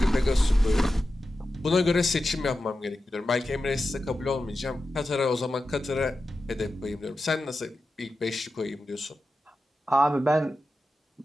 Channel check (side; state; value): both; normal; correlation 0.92